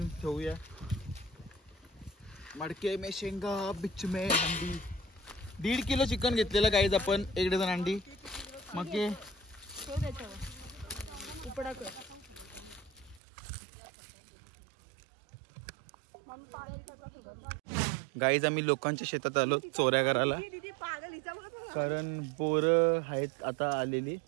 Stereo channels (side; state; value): left; drops out; at 13.2 s